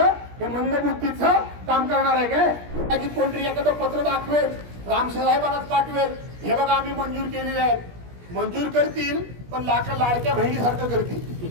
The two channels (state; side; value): late; left; 17 ms